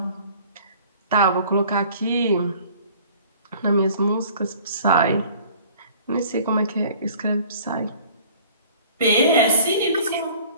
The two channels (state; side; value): inverted; both; correlation -0.50